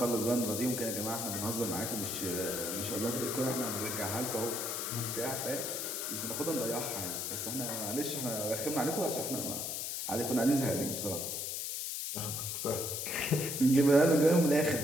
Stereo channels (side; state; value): left; noise; hiss, 3 dB below the sound